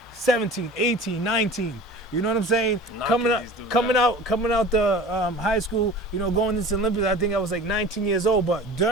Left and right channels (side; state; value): both; normal; correlation 0.40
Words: 17, 18, 19. You know what I'm saying? Coming out the high school, going into the Olympics, I think I was like 19 years old. But